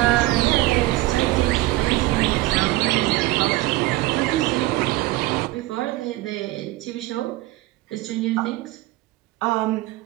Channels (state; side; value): quieter; left; 18.8 dB